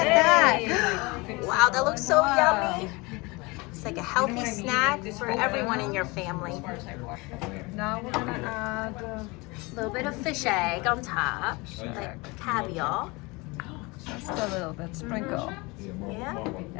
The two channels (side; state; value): right; quieter; 25.4 dB